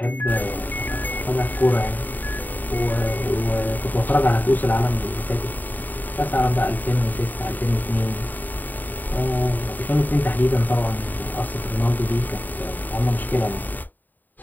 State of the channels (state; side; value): late; right; 0.087 ms